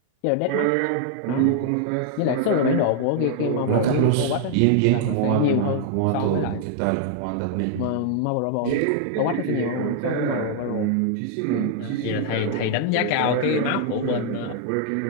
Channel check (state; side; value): different; both; correlation 0.00